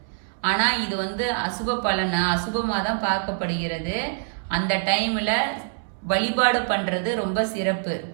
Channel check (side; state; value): left; silent; digital silence